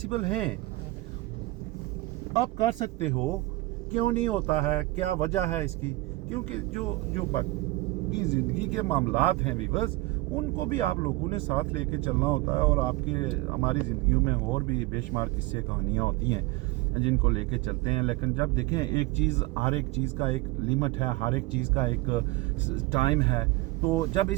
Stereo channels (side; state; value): left; quieter; 20.6 dB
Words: ہیں, آپ کر سکتے ہو. کیوں نہیں ہوتا ہے, کیا وجہ ہے اس کی؟ کیونکہ جو باقی زندگی کے معاملات ہیں ویورز, ان کو بھی آپ لوگوں نے ساتھ لے کے چلنا ہوتا ہے, اور آپ کے ہماری زندگیوں میں اور بھی بے شمار قصے کہانیاں ہوتی ہیں جن کو لے کے چلتے ہیں. لیکن جب دیکھیں ہر ایک چیز کا ایک لمٹ ہے, ہر ایک چیز کا ایک ٹائم ہے, تو جب